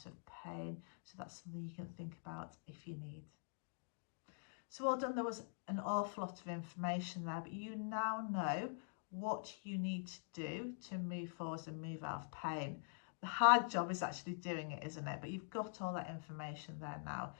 of pain, so that's something you can think about if you need. So well done. There was an awful lot of information there, but you now know what you need to do to move forward and move out of pain. The hard job is actually doing it, isn't it? But you've got all that information there now.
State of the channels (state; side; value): silent; right; digital silence